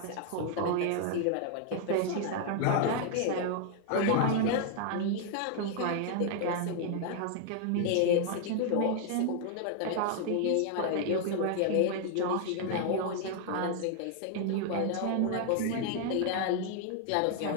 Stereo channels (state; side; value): different; both; correlation 0.00